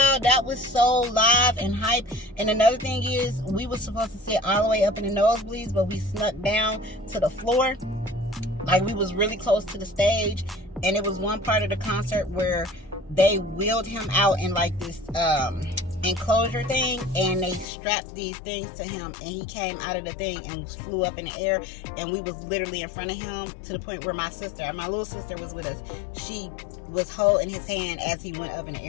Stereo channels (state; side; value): drops out; right; at 17.7 s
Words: that was so live and hype. And another thing is, we were supposed to sit all the way up in the nosebleeds, but we snuck down to the floor. Like, we was really close to the stage. And it was one part of the concert where they wheeled him out in like this enclosure thing, and they strapped these things to him, and he came out of the thing and flew up in the air, and we was literally in front of him to the point where my little sister was with us. She was holding his hand as he went up in the